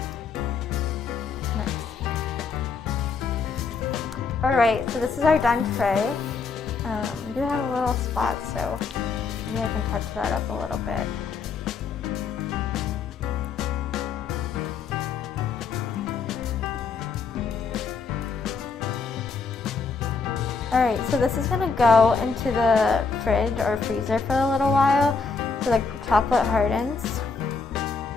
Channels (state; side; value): quieter; right; 4.9 dB